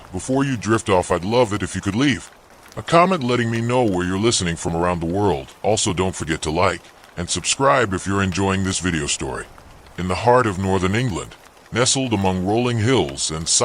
before you drift off, I'd love it if you could leave a comment letting me know where you're listening from around the world. Also, don't forget to like and subscribe if you're enjoying this video story. In the heart of northern England, nestled among rolling hills and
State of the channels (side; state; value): both; identical; correlation 1.00